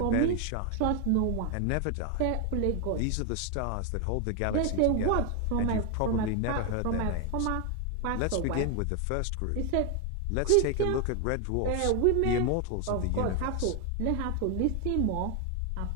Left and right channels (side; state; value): both; different; correlation 0.01